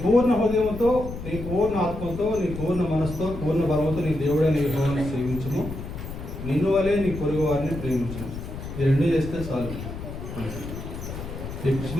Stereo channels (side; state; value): left; noise; rumble, 9 dB below the sound